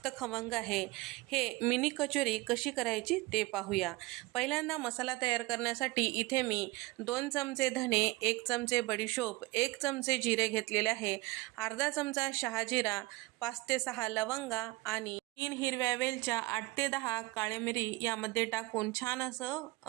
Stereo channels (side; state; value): left; quieter; 21.1 dB